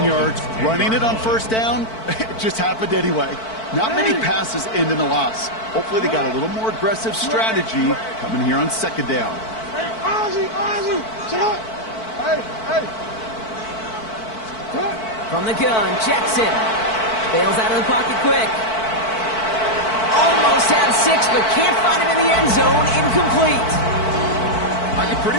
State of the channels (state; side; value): late; right; 4.5 ms